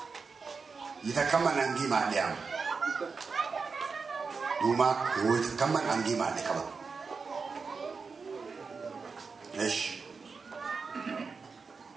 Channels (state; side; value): quieter; left; 4.9 dB